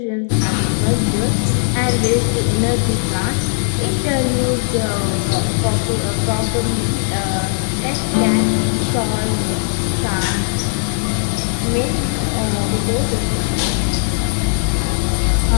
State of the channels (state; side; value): silent; right; digital silence